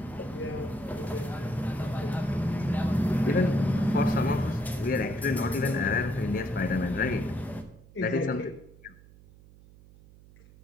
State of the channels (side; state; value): right; noise; hum, 23 dB below the sound